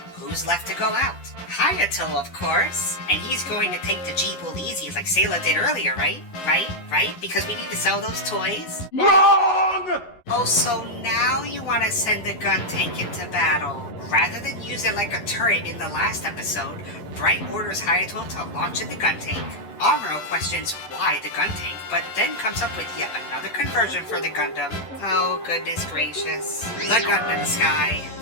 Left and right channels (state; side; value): late; right; 11 ms